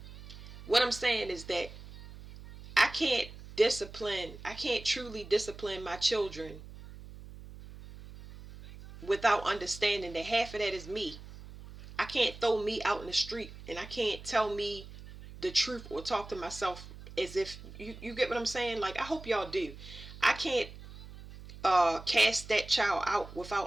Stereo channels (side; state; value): right; noise; hum, 15 dB below the sound